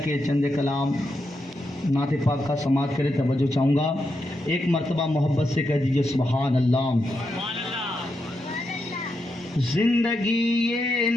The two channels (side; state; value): both; normal; correlation 0.84